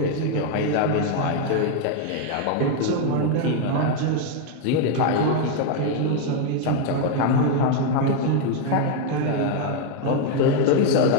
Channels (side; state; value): both; different; correlation 0.00